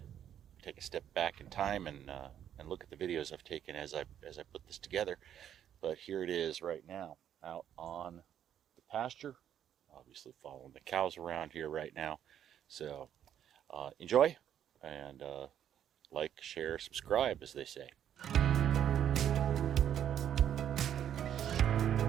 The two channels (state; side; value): quieter; left; 9.9 dB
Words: take a step back in time, and look at the videos I've taken as I put this together. But here it is right now, out on the pasture. Obviously following the cows around here right now. So enjoy, and like, share, subscribe, as they say.